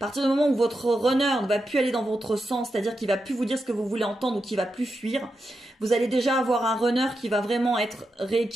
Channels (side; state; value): both; normal; correlation 0.87